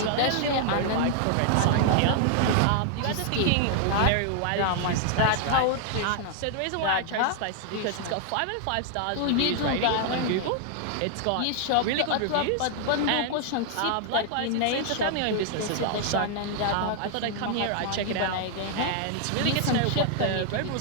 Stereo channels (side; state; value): both; different; correlation 0.00